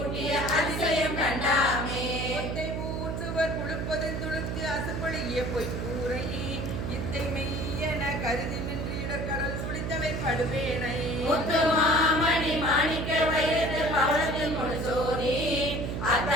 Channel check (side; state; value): right; noise; hum, 3 dB below the sound